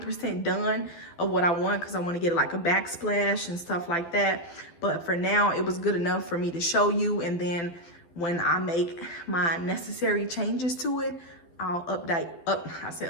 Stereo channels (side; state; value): right; late; 12 ms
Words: done of what I want, because I want to get like a backsplash and stuff like that. But for now, it was good enough for me to show you, and then when I make my necessary changes to it, I'll update.